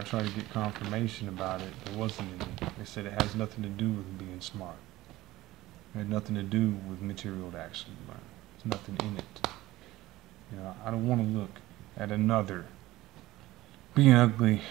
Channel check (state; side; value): quieter; left; 17.4 dB